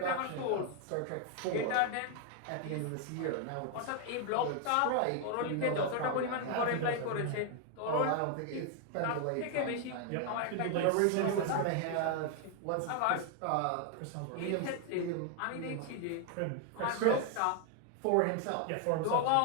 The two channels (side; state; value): both; different; correlation 0.00